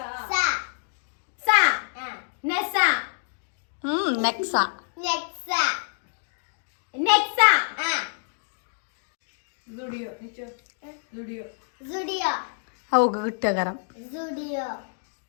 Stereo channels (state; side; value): silent; right; digital silence